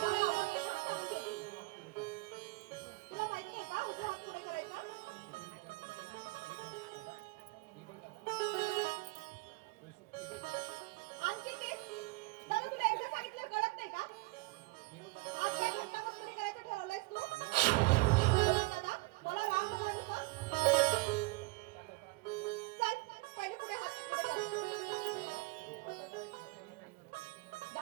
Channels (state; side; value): quieter; left; 24.7 dB